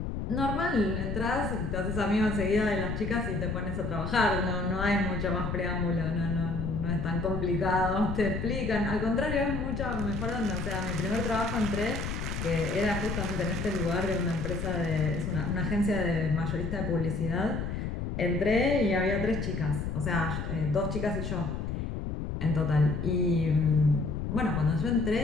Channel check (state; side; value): noise; left; rumble, 3 dB below the sound